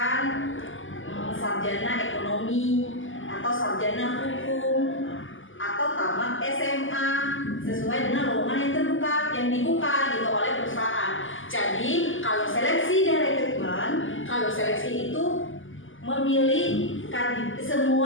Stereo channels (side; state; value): right; late; 0.58 ms